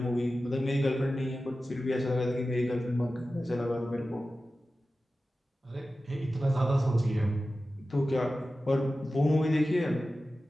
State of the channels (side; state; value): both; normal; correlation 0.94